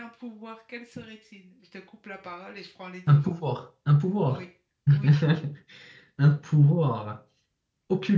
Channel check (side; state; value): both; identical; correlation 1.00